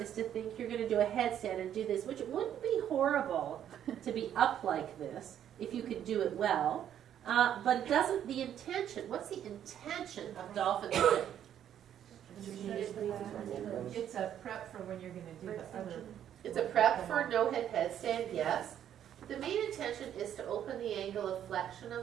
is to think you're going to do a headstand and do this, which wouldn't be horrible to be up like this if you could do it well. But it doesn't, the intention, what's the intention of dolphin plank? It's a prep for when you're going to do the other. It's a prep for no-head headstand, yes. The main intention is to open the angle of flexion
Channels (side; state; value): left; quieter; 10.1 dB